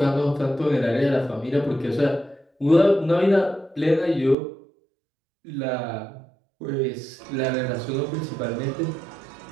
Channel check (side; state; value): left; drops out; at 4.4 s